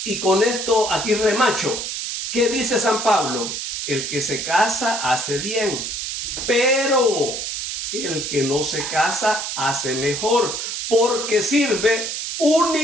Y con esto aquí remacho. ¿Qué dice San Pablo? El que se casa hace bien, pero el que no se casa hace mejor, porque sirve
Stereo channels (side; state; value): right; noise; hiss, 4 dB below the sound